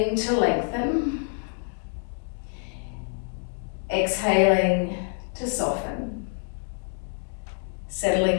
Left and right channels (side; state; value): right; silent; 60 dB below the other